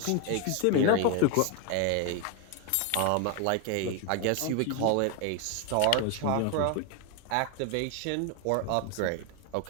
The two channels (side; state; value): both; different; correlation 0.01